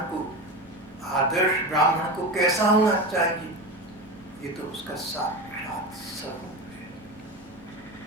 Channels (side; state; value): both; normal; correlation 0.24